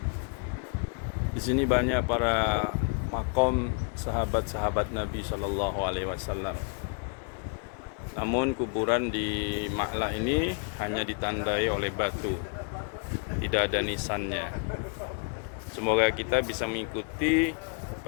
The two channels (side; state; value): right; quieter; 38.7 dB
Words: Di sini banyak para makom sahabat-sahabat Nabi Sallallahu Alaihi Wasallam. Namun kuburan di Ma'lah ini hanya ditandai oleh batu, tidak ada nisannya. Semoga kita bisa mengikuti